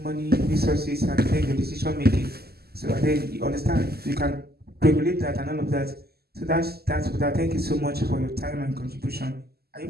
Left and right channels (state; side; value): late; left; 0.46 ms